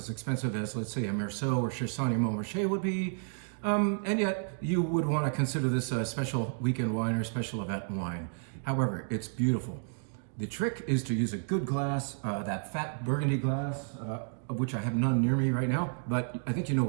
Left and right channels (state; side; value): silent; left; digital silence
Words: expensive as, let's say, a Meursault or Chassagne-Montrachet would be. And yet, you would want to consider this a special weekend wine or special event wine. However, it's beautiful. The trick is to use a good glass, that fat Burgundy glass, of which I have none near me right now, but I think you know